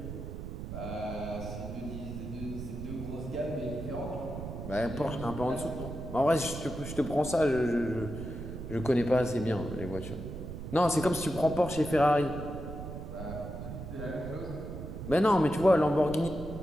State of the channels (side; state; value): right; noise; rumble, 8 dB below the sound